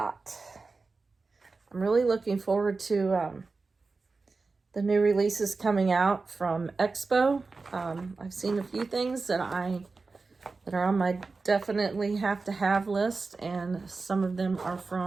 I'm really looking forward to the new releases coming out from Expo. I've seen a few things that are on my definitely have to have list, and some of them are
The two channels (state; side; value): quieter; left; 4.0 dB